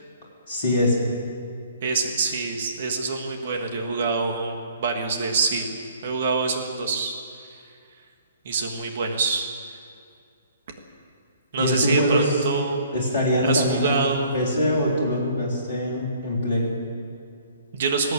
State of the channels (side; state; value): both; inverted; correlation -0.57